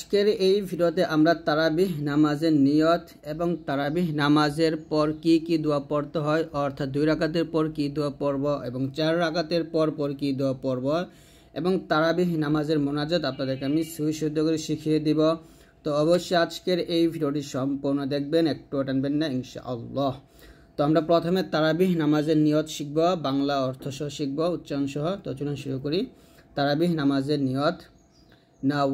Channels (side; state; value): both; identical; correlation 1.00